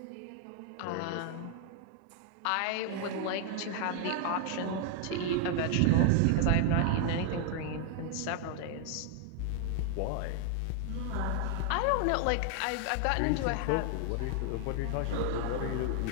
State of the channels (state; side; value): different; both; correlation 0.00